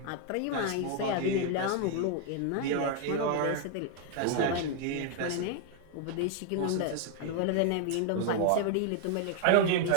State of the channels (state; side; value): different; both; correlation 0.00